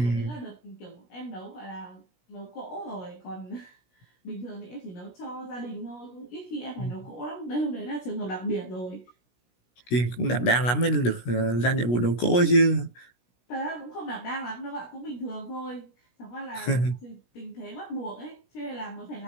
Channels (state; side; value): late; right; 17 ms